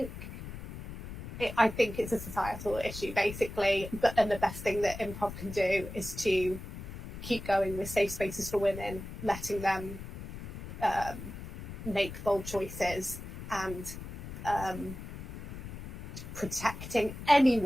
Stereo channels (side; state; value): left; noise; rumble, 10 dB below the sound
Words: it's a societal issue, basically. And the best thing that improv can do is to keep going with safe spaces for women, letting them make bold choices, and protecting